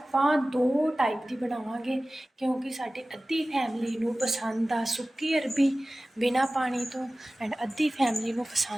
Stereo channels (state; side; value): normal; both; correlation 0.97